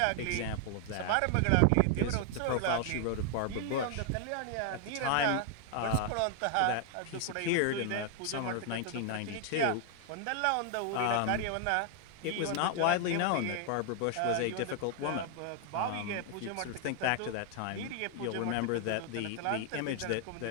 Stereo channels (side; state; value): both; different; correlation 0.00